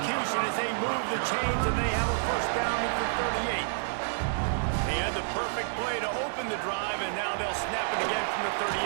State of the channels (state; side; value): silent; left; digital silence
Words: as they move the chains, and they have a 1st down at the 38. They had the perfect play to open the drive, and now they'll snap it again from the